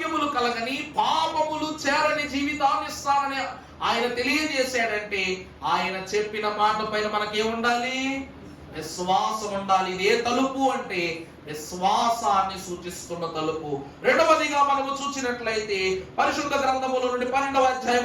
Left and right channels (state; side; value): identical; both; correlation 1.00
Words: కలగని, పాపములు చేరని జీవితాన్ని ఇస్తానని ఆయన తెలియజేశాడంటే ఆయన చెప్పిన మాట పైన మనకేముండాలి? విశ్వాసం ఉండాలి. ఇదే తలుపు అంటే విశ్వాసాన్ని సూచిస్తున్న తలుపు. రెండవదిగా మనము చూసినట్లయితే పరిశుద్ధ గ్రంథముల నుండి 12వ అధ్యాయం